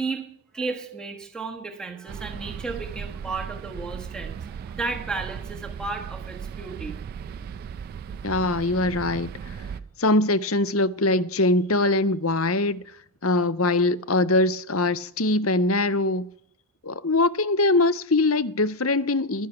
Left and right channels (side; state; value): both; normal; correlation 0.11